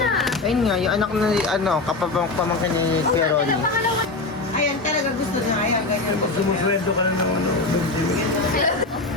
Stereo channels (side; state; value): right; quieter; 3.4 dB